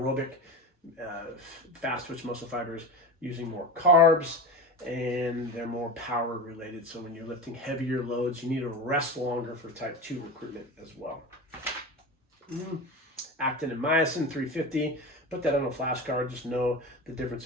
fast twitch muscle fibers using more carbs, and they're more power related. So when you're lifting heavier loads, you need to rest longer for type 2 recruitment as well. Actin and myosin, 350. Put that on a flashcard. Just know the difference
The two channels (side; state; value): both; normal; correlation 0.27